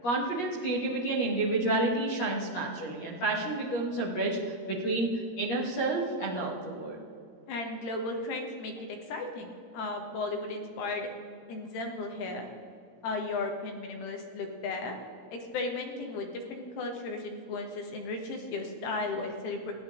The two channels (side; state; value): right; late; 17 ms